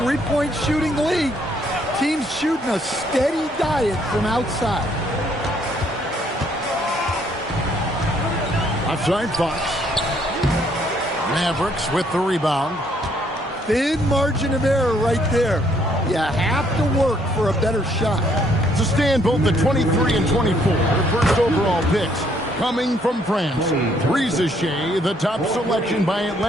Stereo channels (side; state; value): both; normal; correlation 0.67